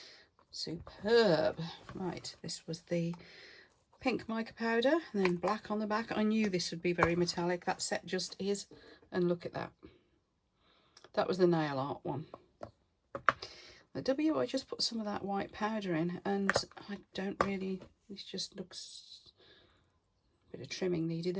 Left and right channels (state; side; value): identical; both; correlation 1.00